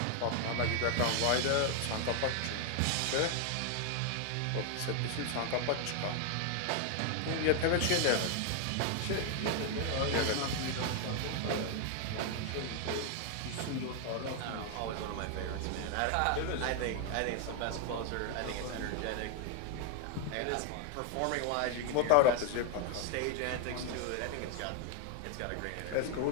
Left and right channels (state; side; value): different; both; correlation 0.00